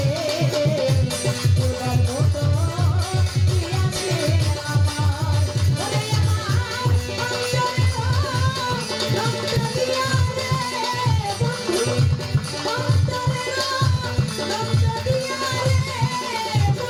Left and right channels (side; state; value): both; identical; correlation 1.00